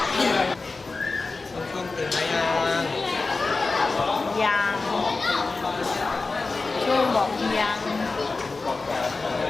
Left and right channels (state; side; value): quieter; right; 3.8 dB